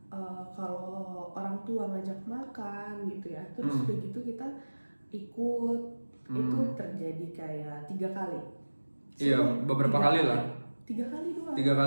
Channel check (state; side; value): inverted; both; correlation -1.00